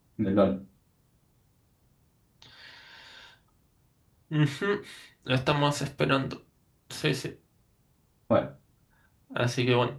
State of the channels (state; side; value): identical; both; correlation 1.00